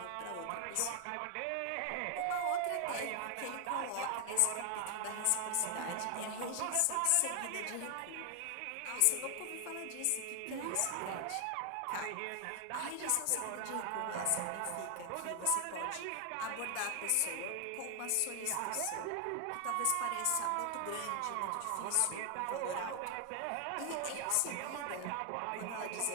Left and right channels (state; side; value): different; both; correlation 0.00